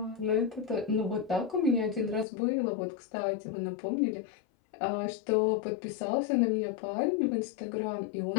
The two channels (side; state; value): right; drops out; at 2.2 s